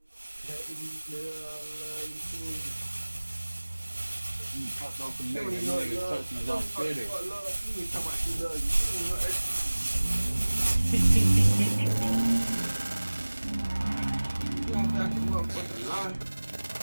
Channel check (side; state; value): both; inverted; correlation -1.00